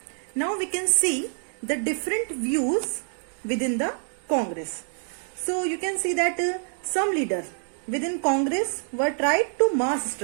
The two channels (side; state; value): left; silent; 56 dB below the other